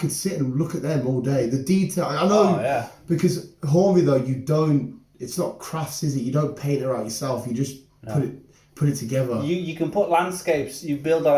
sit and look at them all day. The detail, I know, because Hornby though, you don't. It's not crafts, is it? You don't paint it out yourself. You just put it together. You can put landscapes. You build the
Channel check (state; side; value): identical; both; correlation 1.00